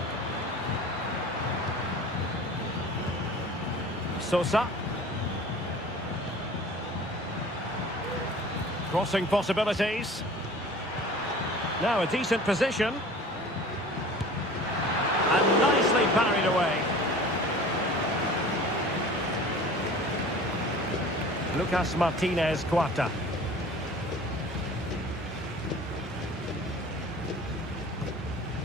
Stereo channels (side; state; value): both; normal; correlation 0.42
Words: Sosa. Crossing possibilities. Now a decent position. And nicely parried away. Lucas Martinez Cuarta.